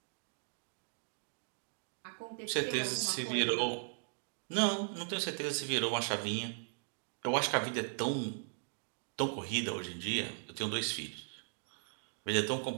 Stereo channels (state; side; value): silent; left; digital silence